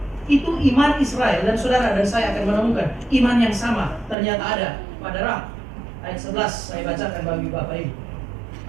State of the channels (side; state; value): left; drops out; at 4.2 s